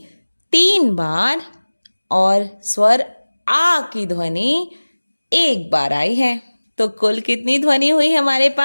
3 बार और स्वर आ की ध्वनि 1 बार आई है। तो कुल कितनी ध्वनि हुई हमारे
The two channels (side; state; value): both; inverted; correlation -1.00